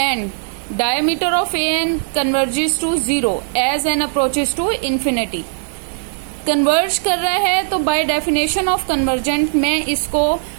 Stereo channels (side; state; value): left; silent; 64 dB below the other